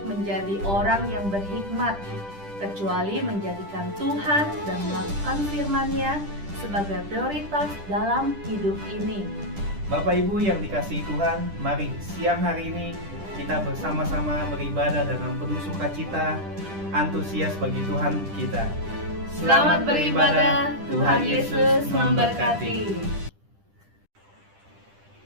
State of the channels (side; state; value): left; late; 10 ms